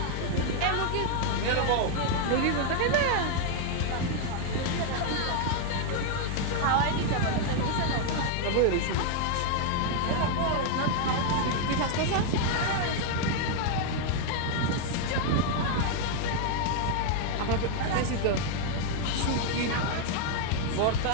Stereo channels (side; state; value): both; different; correlation 0.00